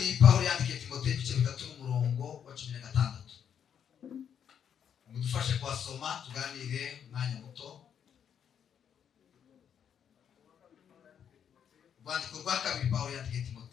Pawulo yandikiye Timoteyo ibice 3 n'umurongo wa 16. Mudufashe kwasoma tuganire umwanya muto. Urwandiko rwa kabiri Pawulo yandikiye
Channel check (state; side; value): quieter; right; 8.3 dB